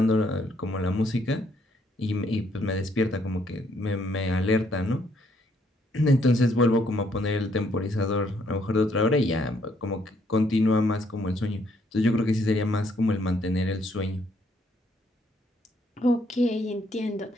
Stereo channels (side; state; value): both; normal; correlation 0.70